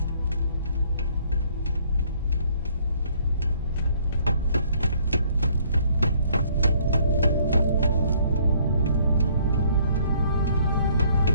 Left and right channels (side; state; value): both; inverted; correlation -0.63